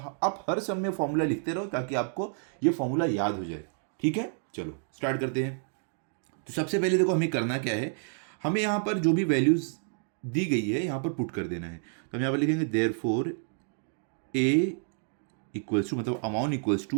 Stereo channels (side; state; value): left; silent; digital silence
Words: हर सम में फॉर्मूला लिखते रहो ताकि आपको ये फॉर्मूला याद हो जाए। ठीक है, चलो स्टार्ट करते हैं। तो सबसे पहले देखो हमें करना क्या है, हमें यहाँ पर जो भी वैल्यूज दी गई है यहाँ पर पुट कर देना है। तो हम यहाँ पर लिखेंगे देयरफॉर ए इक्वल्स टू, मतलब amount equals